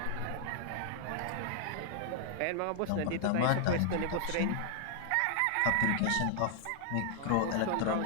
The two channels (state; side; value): different; both; correlation 0.00